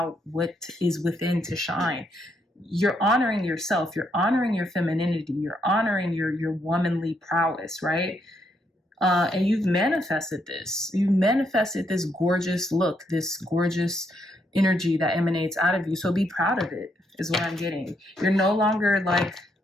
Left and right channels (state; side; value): normal; both; correlation 0.76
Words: what is within to shine. You're honoring yourself. You're honoring your femininity. You're honoring your womanly prowess, right? And you've manifested this. You manifested this gorgeous look, this gorgeous energy that emanates out of you. So be proud of it, is what I'm getting. You're no longer like